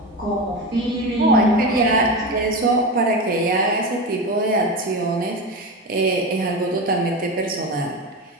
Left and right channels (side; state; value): both; normal; correlation 0.21